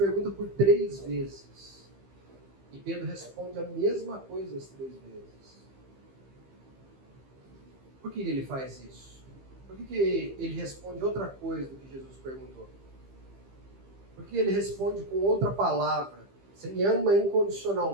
por 3 vezes. E Pedro responde a mesma coisa as 3 vezes. Por que ele faz isso? Por que ele responde outra coisa do que Jesus perguntou? Por que ele responde com outra palavra? Você me ama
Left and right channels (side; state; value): left; late; 15 ms